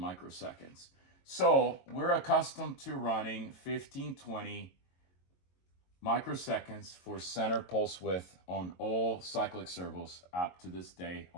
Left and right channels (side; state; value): right; late; 22 ms